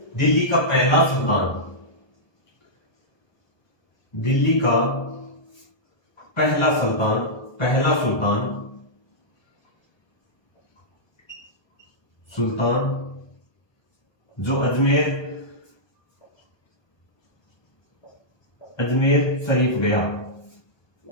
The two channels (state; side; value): late; right; 1.2 ms